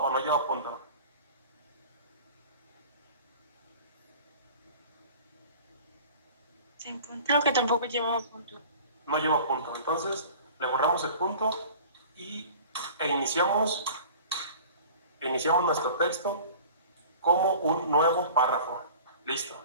no lleva punto? Sin punto. Creo que tampoco llevaba punto. No lleva punto. Entonces, le borramos el punto e iniciamos nuestro texto como un nuevo párrafo. Listo.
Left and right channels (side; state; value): both; inverted; correlation -0.43